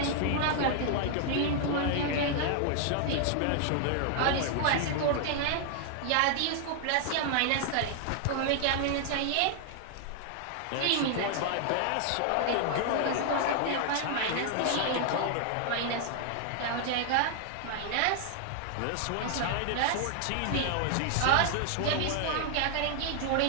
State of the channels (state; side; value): different; both; correlation 0.00